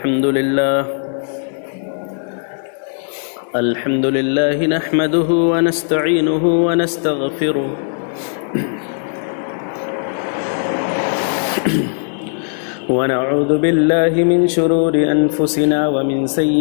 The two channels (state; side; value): silent; right; 66 dB below the other